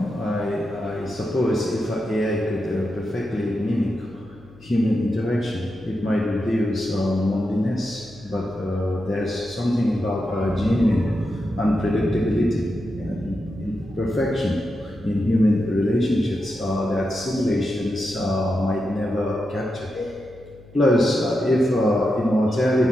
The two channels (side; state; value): left; noise; hum, 23 dB below the sound